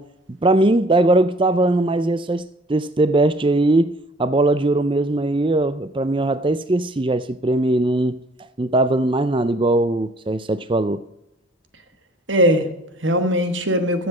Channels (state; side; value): normal; both; correlation 0.55